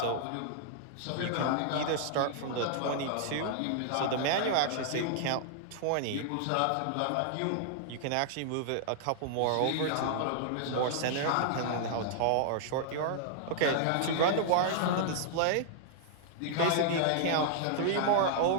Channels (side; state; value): both; different; correlation -0.01